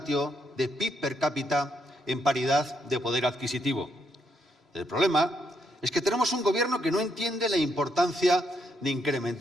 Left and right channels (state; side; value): normal; both; correlation 0.76